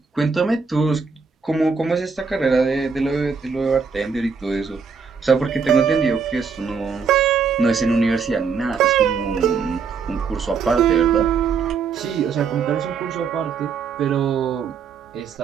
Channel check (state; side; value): quieter; left; 5.6 dB